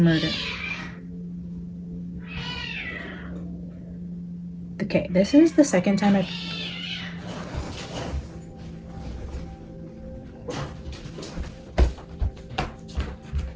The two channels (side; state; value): both; identical; correlation 1.00